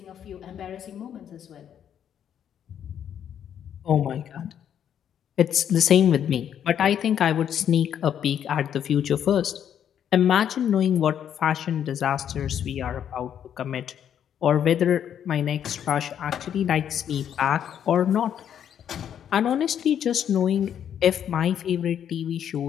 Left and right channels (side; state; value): right; quieter; 9.2 dB